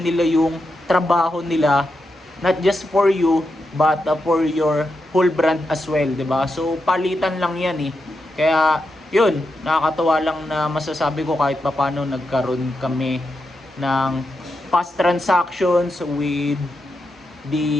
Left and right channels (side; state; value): both; normal; correlation 0.86